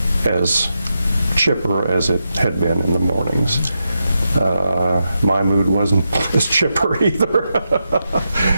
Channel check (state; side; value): inverted; both; correlation -0.87